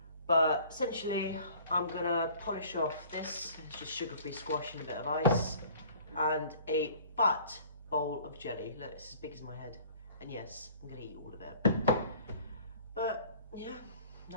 But essentially, I'm gonna polish off this. It's just sugar-free squash and a bit of ice, and a fat bowl of jelly. Look, it's as big as my head. And yes, I'm gonna eat all of it. But yeah,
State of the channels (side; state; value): both; inverted; correlation -0.51